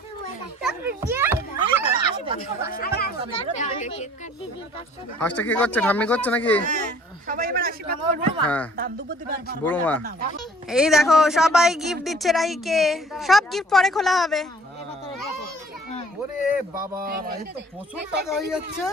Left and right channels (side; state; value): both; normal; correlation 0.54